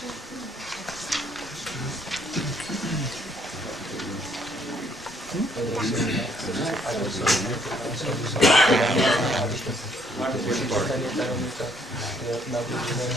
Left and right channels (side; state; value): both; normal; correlation 0.66